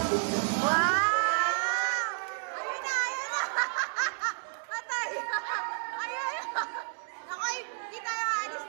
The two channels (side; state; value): left; silent; digital silence